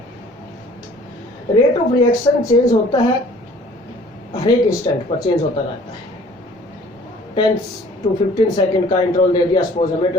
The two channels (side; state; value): both; normal; correlation 0.53